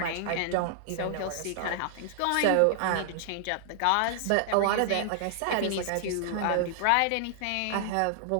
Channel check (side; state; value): both; different; correlation -0.01